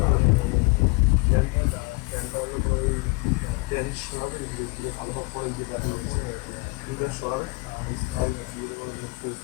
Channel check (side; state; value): right; quieter; 26.8 dB